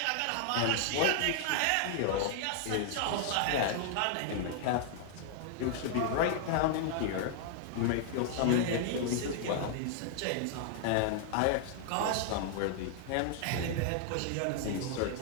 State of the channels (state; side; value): different; both; correlation 0.00